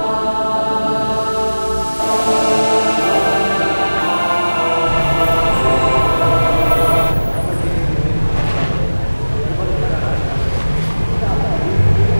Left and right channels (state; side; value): inverted; both; correlation -1.00